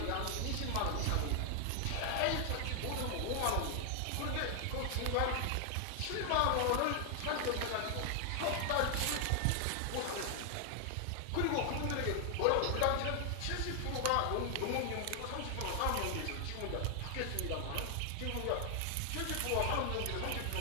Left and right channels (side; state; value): both; different; correlation 0.00